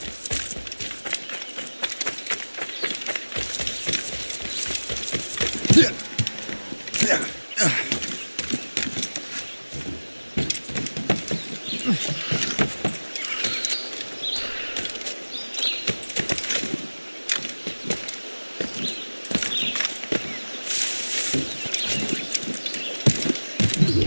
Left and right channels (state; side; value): inverted; both; correlation -1.00